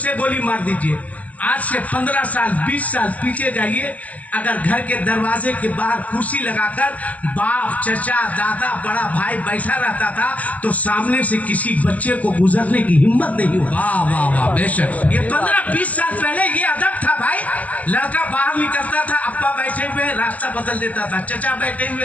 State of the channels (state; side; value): late; right; 0.071 ms